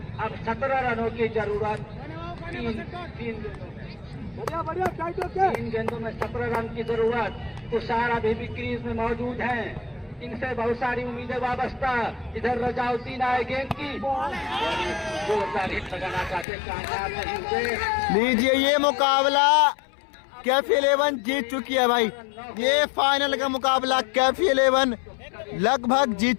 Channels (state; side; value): drops out; right; at 16.4 s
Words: अब 17 रनों की जरूरत। 3 गेंदों में 17 रन की जरूरत। तुषार अभी भी क्रीज में मौजूद हैं। इनसे बहुत सारी उम्मीदें वाबस्ता। इधर रजाउद्दीन आए गेंद की, जोरदार हिट लगाना चाहते, कामयाब नहीं हुए। लीजिए ये मुकाबला कैफी 11 जीत चुकी है भाई। ये फाइनल का मुकाबला कैफी 11 लगभग